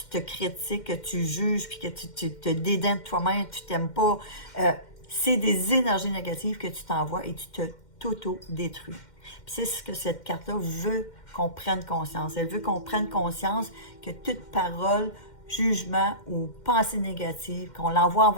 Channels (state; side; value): late; right; 2.1 ms